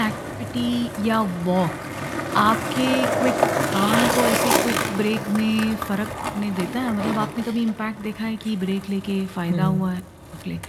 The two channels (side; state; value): both; identical; correlation 1.00